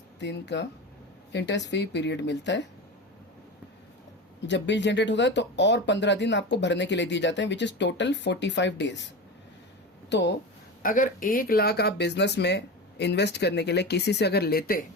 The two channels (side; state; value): both; normal; correlation 0.25